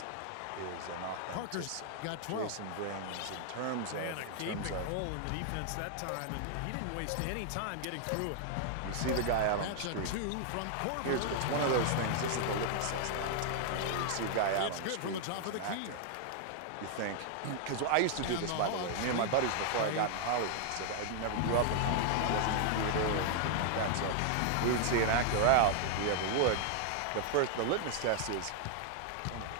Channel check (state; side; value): different; both; correlation 0.00